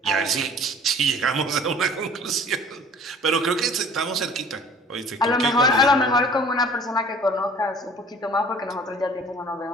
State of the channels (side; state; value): both; normal; correlation 0.49